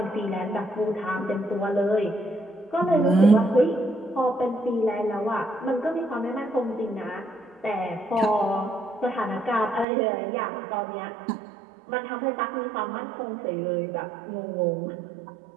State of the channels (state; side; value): drops out; left; at 9.9 s